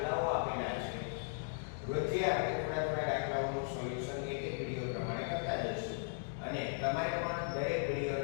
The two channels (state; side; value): silent; right; digital silence